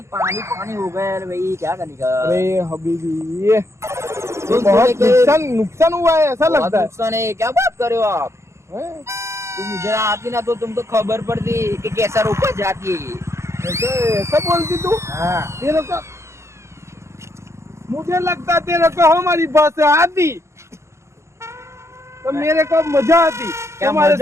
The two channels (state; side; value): late; left; 0.13 ms